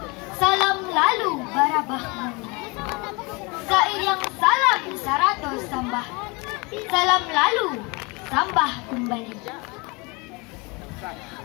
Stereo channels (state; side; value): quieter; right; 27.7 dB